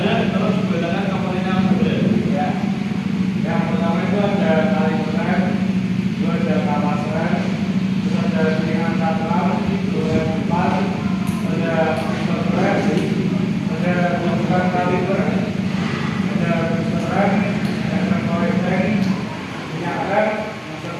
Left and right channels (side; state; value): both; identical; correlation 1.00